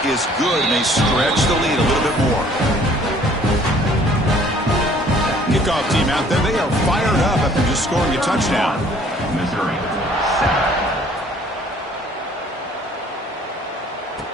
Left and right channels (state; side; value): normal; both; correlation 0.57